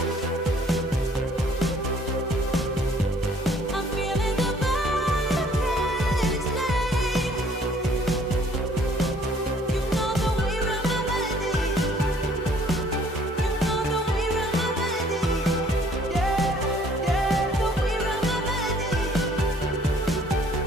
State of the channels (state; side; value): normal; both; correlation 0.59